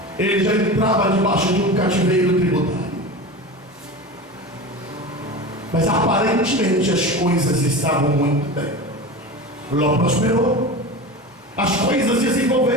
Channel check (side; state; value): both; normal; correlation 0.29